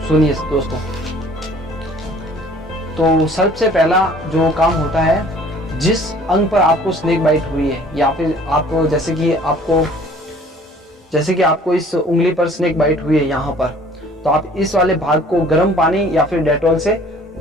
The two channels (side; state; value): both; normal; correlation 0.53